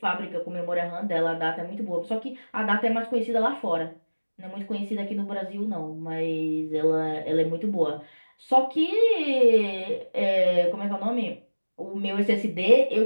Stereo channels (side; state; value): both; inverted; correlation -1.00